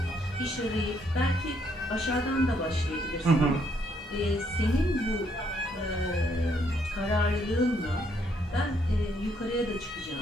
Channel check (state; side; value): normal; both; correlation 0.71